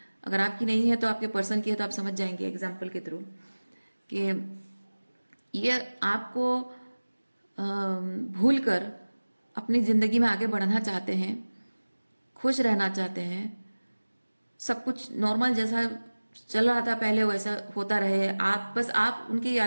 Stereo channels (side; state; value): both; inverted; correlation -1.00